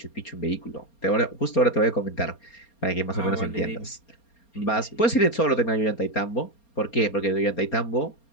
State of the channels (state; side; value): late; right; 4.3 ms